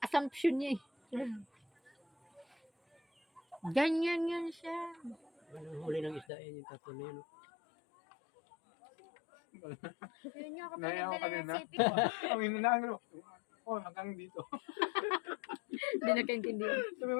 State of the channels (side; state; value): right; drops out; at 6.2 s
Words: assumption niya eh. Ganyan yan siya. Anong huli ng isda yan yung tatlo na yun. Yun yung ako Naya ako pinagdala ng kanina. sipi. Ang inanaan ko. Oh, hanggang dito. Hindi nakaintindihan. Sabi mo